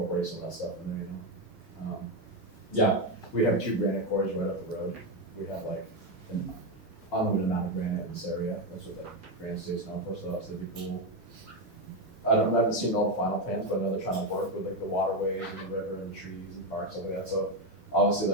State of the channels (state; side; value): normal; both; correlation 0.09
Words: some of that stuff in there, you know? Yeah, we have 2 granite quarries right up the road. We have like an unlimited amount of granite in this area, that's what the Granite State's known for, so that's, that'd be cool. I haven't seen all the final plans, but I know they're trying to work with like the waterways and the river and the trees and parks, stuff like that, so obviously